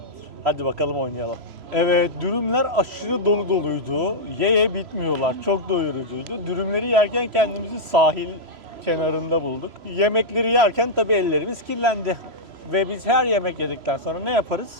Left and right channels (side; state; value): left; late; 3.0 ms